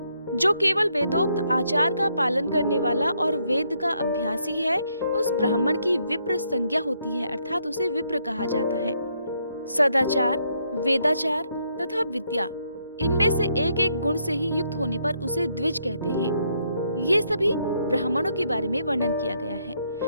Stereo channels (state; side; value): inverted; both; correlation -0.74